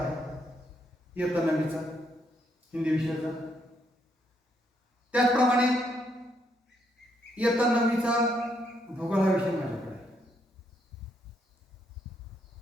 इयत्ता 9वीचा हिंदी विषयाचा, त्याचप्रमाणे इयत्ता 9वीचा भूगोल हा विषय माझ्याकडे आहे.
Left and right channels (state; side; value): normal; both; correlation 0.75